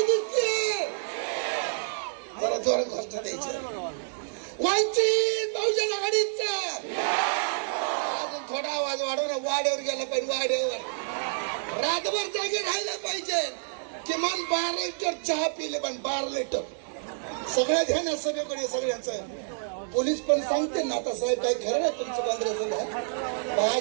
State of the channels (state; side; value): silent; left; digital silence